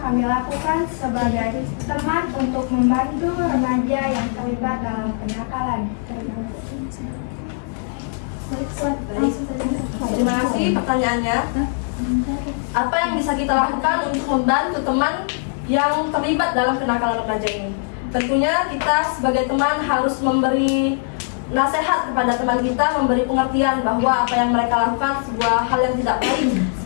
kami lakukan sebagai teman untuk membantu remaja yang terlibat dalam kenakalan. Terima kasih pertanyaannya. Apa yang bisa kita lakukan untuk membantu teman yang terlibat dalam kenakalan remaja ini? Tentunya kita sebagai teman harus memberi nasihat kepada teman kita, memberi pengertian bahwa apa yang mereka lakukan sebuah hal yang tidak baik,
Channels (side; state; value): right; silent; 65 dB below the other